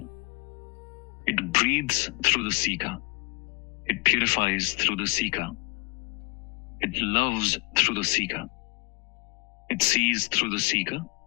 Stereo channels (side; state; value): right; quieter; 31.5 dB